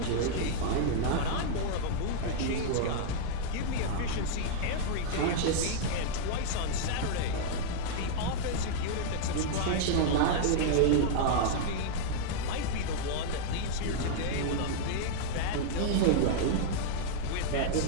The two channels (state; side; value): different; both; correlation -0.01